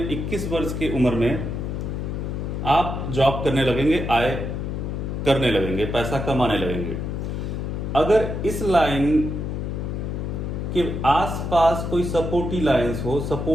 21 वर्ष की उम्र में आप जॉब करने लगेंगे, आय करने लगेंगे, पैसा कमाने लगेंगे। अगर इस लाइन कि आसपास कोई सपोर्टिव लाइंस हो,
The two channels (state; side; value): noise; left; hum, 3 dB below the sound